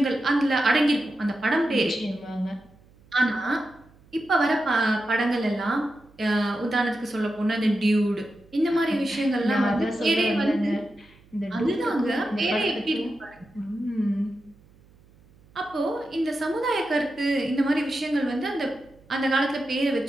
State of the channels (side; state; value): right; noise; hum, 28 dB below the sound